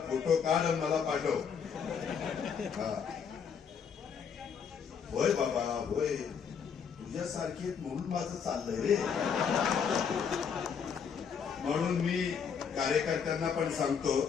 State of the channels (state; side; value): quieter; right; 6.8 dB